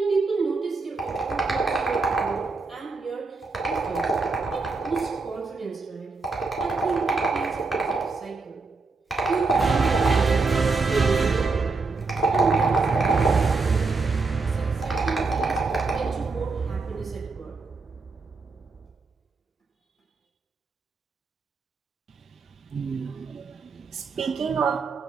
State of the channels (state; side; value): quieter; left; 4.1 dB